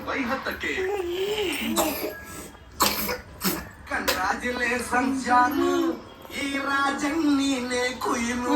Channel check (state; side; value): identical; both; correlation 1.00